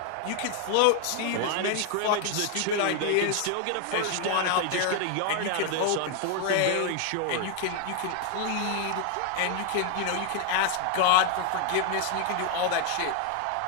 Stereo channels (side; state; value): both; different; correlation 0.00